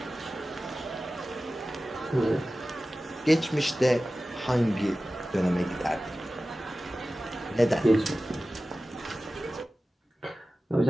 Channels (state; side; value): normal; both; correlation 0.96